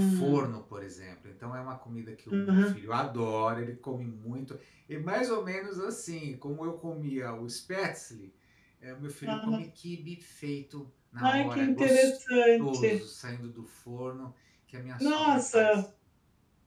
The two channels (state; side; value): identical; both; correlation 1.00